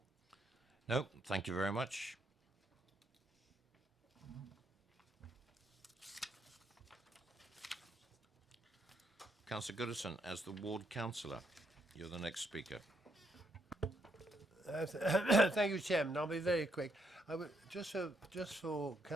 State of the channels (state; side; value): normal; both; correlation 0.76